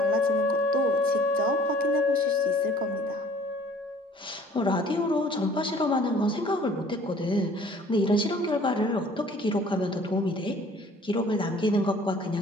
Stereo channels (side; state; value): both; normal; correlation 0.53